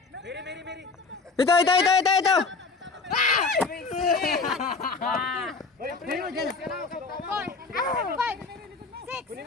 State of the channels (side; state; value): right; quieter; 4.3 dB